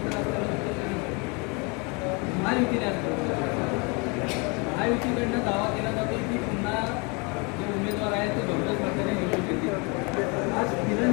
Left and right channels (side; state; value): right; quieter; 30.9 dB